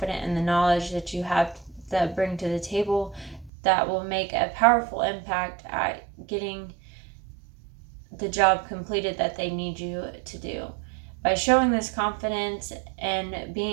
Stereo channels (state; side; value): drops out; left; at 3.5 s